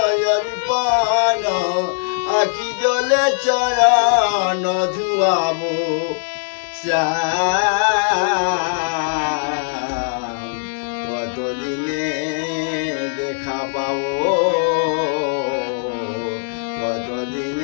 অর্পণ, আখি জলে চরণ ধুয়াব শ্যাম, কতদিনে দেখা পাব,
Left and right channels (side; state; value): right; silent; digital silence